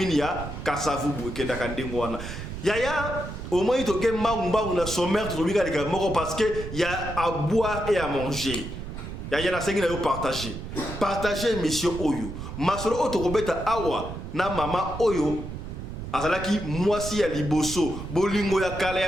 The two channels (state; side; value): noise; right; rumble, 8 dB below the sound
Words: ya Kasavubu Kendakandengo wana. Yaya au moins il y a un sommaire parce qu'il y a à boire et à manger. Il y a un partager. Partager mission Oyo. Masolo Otokobeta Awa na mama Oyo. Azalaki mwasi ya liboso bolingo ya kala